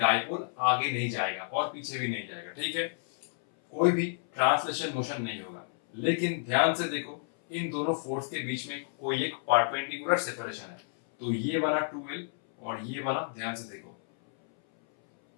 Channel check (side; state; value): right; silent; 58 dB below the other